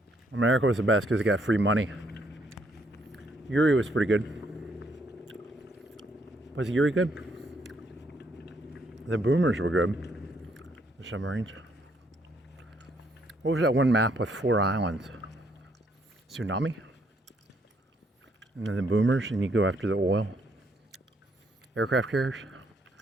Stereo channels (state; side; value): normal; both; correlation 0.71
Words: America was the best because it got free money. Yuri was pretty good. Was Yuri good? The boomers were good. The submarines. What was that one map with 4 islands? Tsunami? And then the boomers, and you go after the oil. Aircraft carriers?